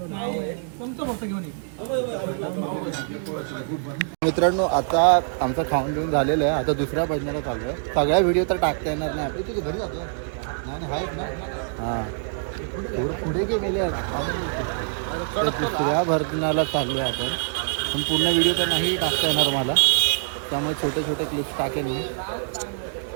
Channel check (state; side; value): silent; left; digital silence